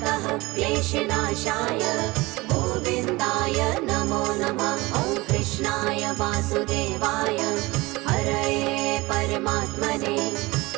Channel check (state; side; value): quieter; left; 21.9 dB